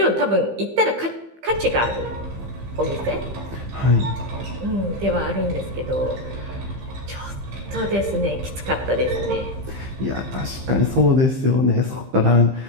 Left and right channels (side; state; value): left; late; 15 ms